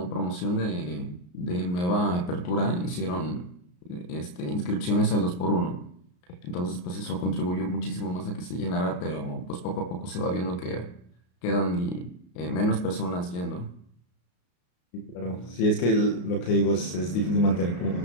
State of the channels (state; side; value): late; right; 33 ms